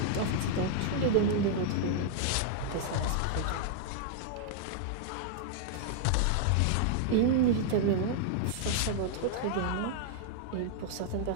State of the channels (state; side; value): different; both; correlation -0.01